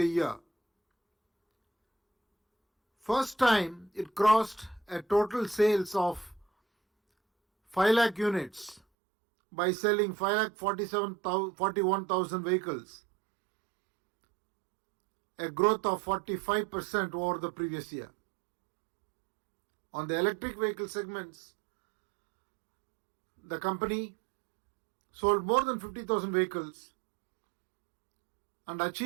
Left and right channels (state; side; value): drops out; left; at 8.8 s